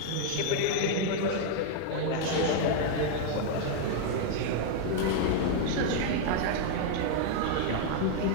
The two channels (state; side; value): different; both; correlation 0.00